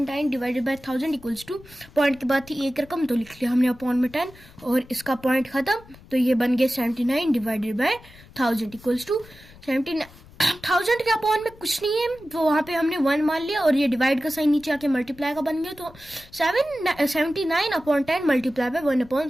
divided by 1000 equals to, point के बाद थी एक रकम, तो लिख लिया हमने अपॉन में 10, और इसका पॉइंट खत्म, तो ये बन गया 79 डिवाइडेड बाय 1000 इक्वल्स टू 79। 1000 के अपॉन में कुछ नहीं है, तो वहां पे हमने 1 मान लिया, और ये डिवाइड का साइन नीचे आके मल्टीप्लाई का बन गया, तो 79 अपॉन 10 मल्टीप्लाई बाय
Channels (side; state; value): left; noise; rumble, 23 dB below the sound